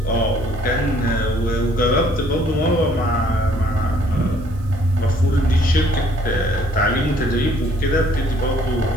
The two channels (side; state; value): right; noise; hiss, 28 dB below the sound